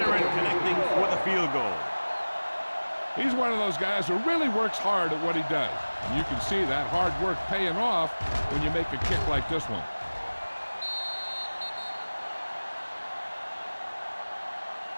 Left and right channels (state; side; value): inverted; both; correlation -1.00